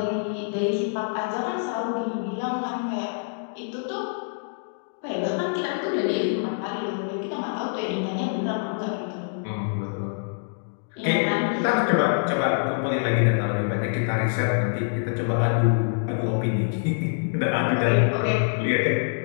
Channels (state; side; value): silent; right; digital silence